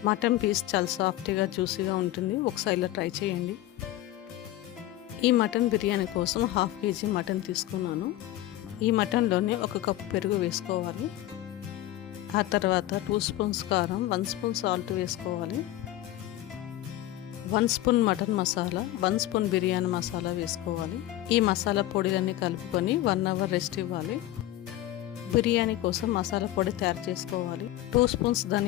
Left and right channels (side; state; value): right; quieter; 14.8 dB